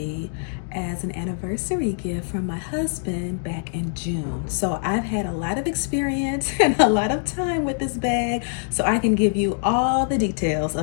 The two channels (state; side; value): silent; right; digital silence